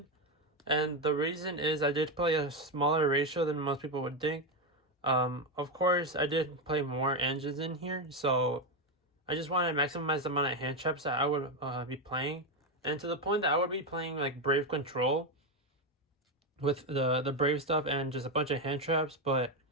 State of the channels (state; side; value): normal; both; correlation 0.09